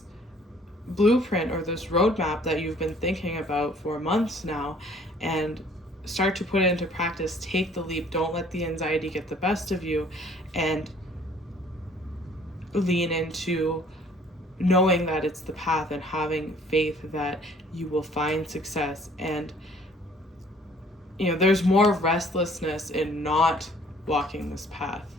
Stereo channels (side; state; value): both; normal; correlation 0.57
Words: blueprint or this roadmap that you've been thinking about for months now, and start to put it into practice. Take the leap. Don't let the anxiety get the best of you, and lean into knowing that it's the path, and having faith that you will find success. And you know, there's more restlessness in not walking this path